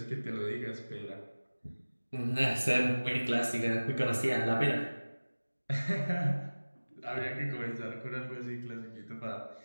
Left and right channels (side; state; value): both; inverted; correlation -1.00